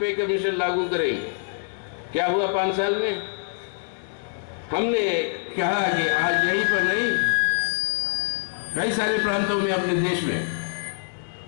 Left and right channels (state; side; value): silent; right; 62 dB below the other